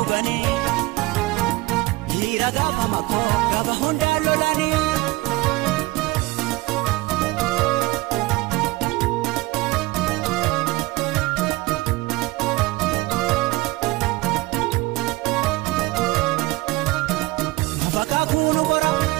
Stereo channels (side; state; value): left; quieter; 21.6 dB